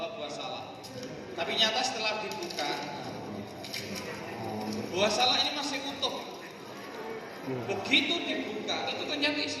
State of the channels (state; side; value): identical; both; correlation 1.00